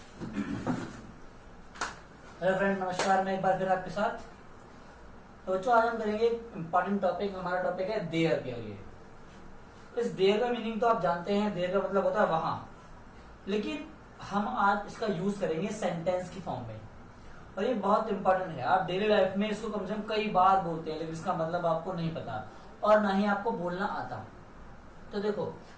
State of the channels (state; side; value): identical; both; correlation 1.00